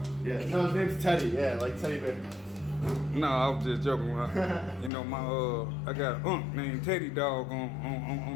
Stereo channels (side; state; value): right; drops out; at 4.9 s